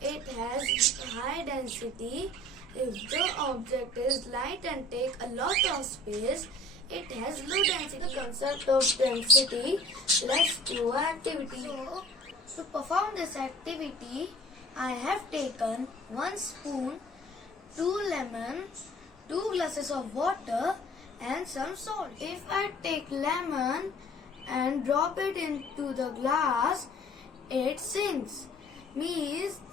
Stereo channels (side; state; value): both; normal; correlation 0.49